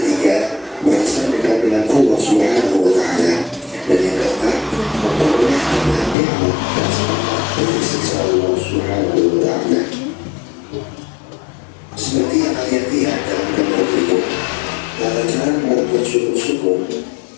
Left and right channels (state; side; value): drops out; right; at 6.2 s